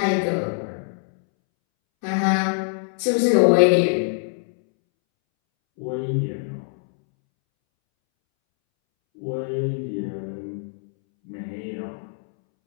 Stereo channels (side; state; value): right; silent; 63 dB below the other